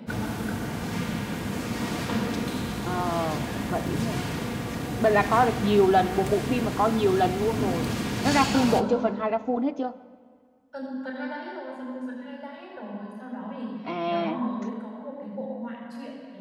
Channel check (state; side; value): identical; both; correlation 1.00